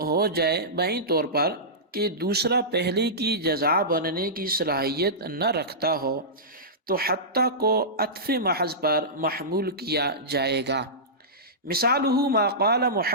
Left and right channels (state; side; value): normal; both; correlation -0.17